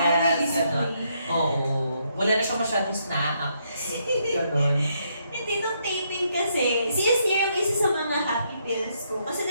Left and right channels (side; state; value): both; inverted; correlation -0.75